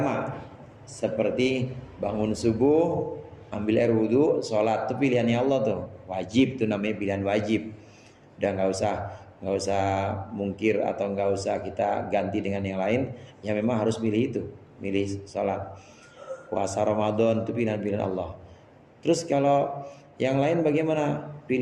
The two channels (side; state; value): both; identical; correlation 1.00